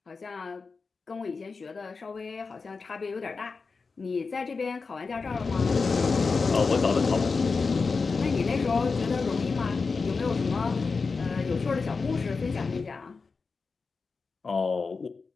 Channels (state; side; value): quieter; right; 4.5 dB